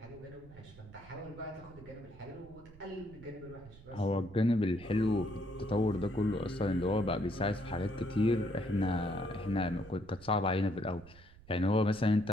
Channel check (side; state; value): right; noise; rumble, 21 dB below the sound